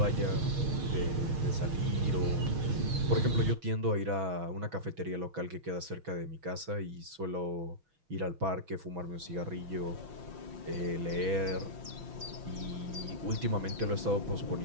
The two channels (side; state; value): left; late; 6.1 ms